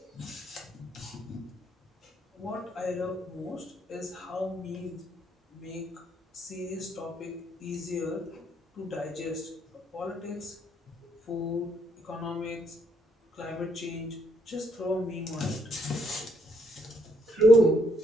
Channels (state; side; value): normal; both; correlation 0.72